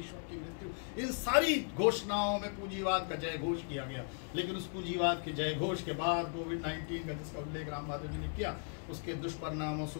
की मृत्यु, इन सारी घोषणाओं में पूंजीवाद का जय घोष किया गया। लेकिन उस पूंजीवाद के जय घोष के बाद कोविड-19 का जिसका उल्लेख राम माधव जी ने किया, उसके दुष्परिणामों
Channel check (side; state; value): right; silent; 53 dB below the other